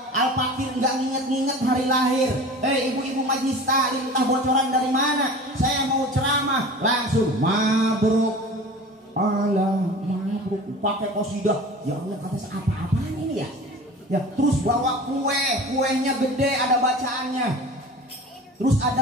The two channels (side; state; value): both; normal; correlation 0.38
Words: Al-Fakir nggak nginget-nginget hari lahir. Ibu-ibu majlis taklim, entah bocoran dari mana. Saya mau ceramah, langsung mabruk. Allah mabruk, pakai qasidah. Ya Allah, kata apa-apaan ini ya? Ya, terus bawa kuenya gede, ada bacaannya. Terus